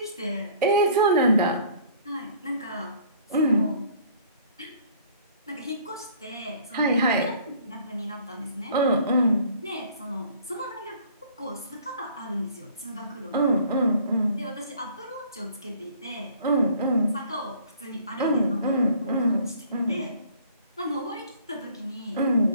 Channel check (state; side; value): inverted; both; correlation -0.54